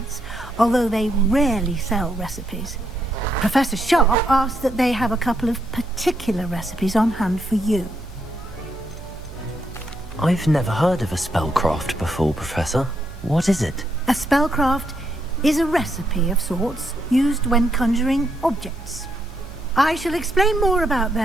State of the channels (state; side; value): normal; both; correlation 0.77